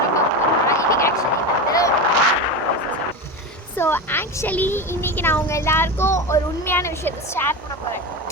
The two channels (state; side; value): normal; both; correlation 0.22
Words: ஸோ ஆக்சுவலி இன்றைக்கி நான் உங்கள் எல்லாருக்கும் ஒரு உண்மையான விஷயத்தை ஷேர் பண்ண போகிறேன்.